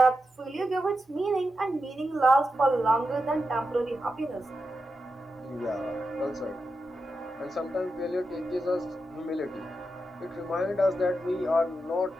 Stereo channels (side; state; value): both; normal; correlation 0.88